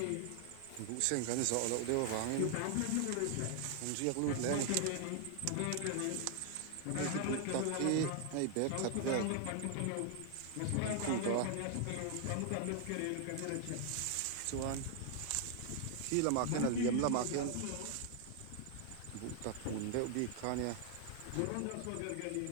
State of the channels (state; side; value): different; both; correlation 0.00